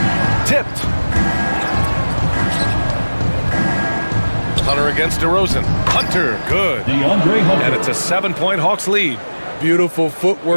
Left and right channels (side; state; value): both; inverted; correlation -1.00